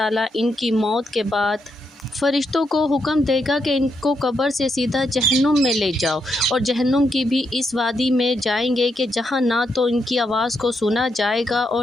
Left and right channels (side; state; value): both; normal; correlation 0.80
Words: ان کی موت کے بعد فرشتوں کو حکم دے گا کہ ان کو قبر سے سیدھا جہنم میں لے جاؤ، اور جہنم کی بھی اس وادی میں جائیں گے کہ جہاں نہ تو ان کی آواز کو سنا جائے گا